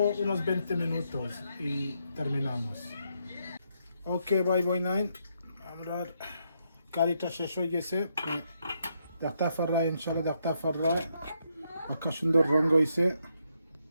20 minutos y terminamos. Ok, bye bye nine. Amrar karita shesho yese. Daqta farra inshallah daqta farra. Akashundo rongo yese.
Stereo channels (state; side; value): inverted; both; correlation -0.78